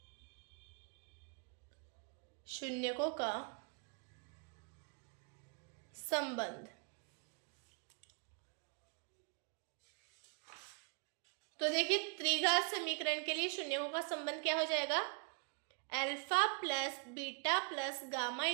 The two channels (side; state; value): left; quieter; 37.2 dB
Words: शून्यकों का संबंध। तो देखिए त्रिघात समीकरण के लिए शून्यकों का संबंध क्या हो जाएगा, alpha plus beta plus gamma